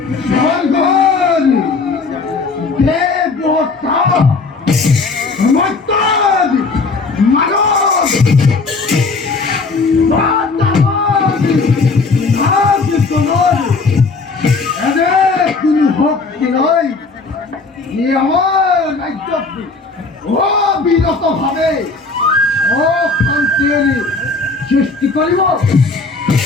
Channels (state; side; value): quieter; right; 4.0 dB